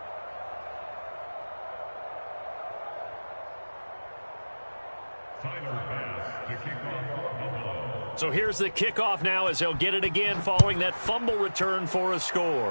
So here's the kickoff now as they'll get it again following that fumble return for a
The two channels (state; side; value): inverted; both; correlation -1.00